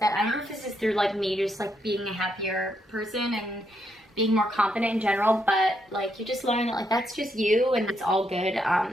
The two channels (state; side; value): normal; both; correlation 0.78